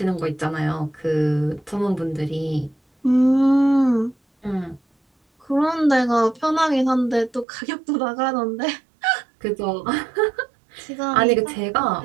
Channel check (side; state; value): left; drops out; at 7.5 s